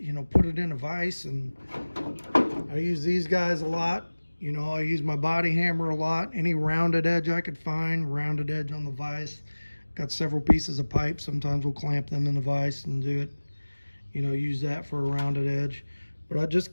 know, put it in a vise, and I use these guys a lot. You know, I use my body hammer a lot. Any rounded edge I could find, rounded edge on the vise. Got several pieces of pipe. Sometimes we'll clamp them in the vise and do it, you know, use that for a rounded edge. But I just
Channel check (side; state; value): both; inverted; correlation -1.00